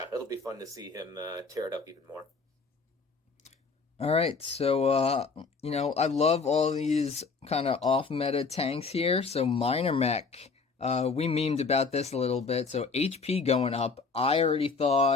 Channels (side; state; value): right; quieter; 4.6 dB